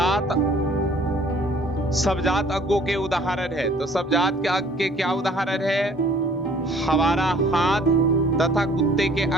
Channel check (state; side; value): normal; both; correlation 0.55